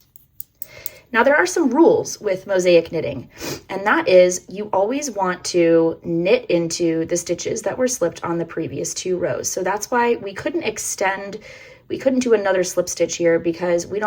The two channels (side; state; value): both; identical; correlation 1.00